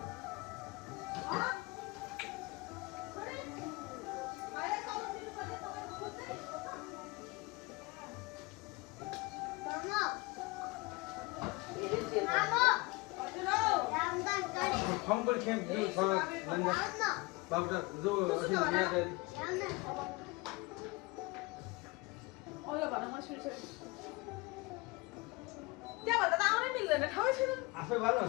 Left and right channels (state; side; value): quieter; right; 24.0 dB